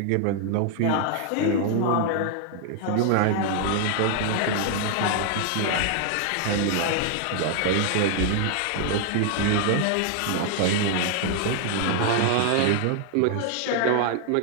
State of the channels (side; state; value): both; different; correlation 0.00